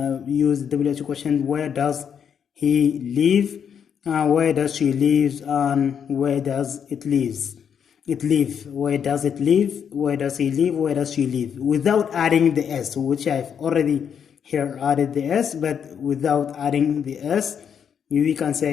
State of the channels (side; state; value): right; quieter; 7.8 dB